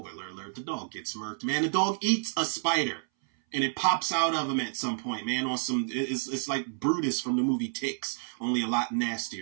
alert, the dog gets murked, man. The dog eats a spider, and it pops out of him at some point, man. On some, it's like Brutus from the movie Ticks, only a lot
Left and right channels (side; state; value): left; silent; 58 dB below the other